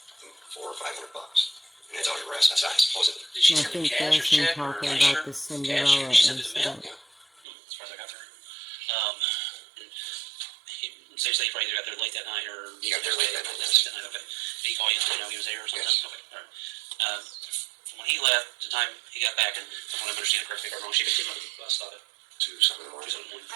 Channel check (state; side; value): drops out; left; at 7.2 s